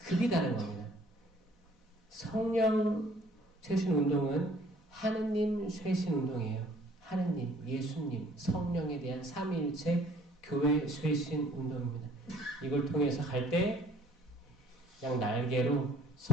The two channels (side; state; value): both; normal; correlation 0.56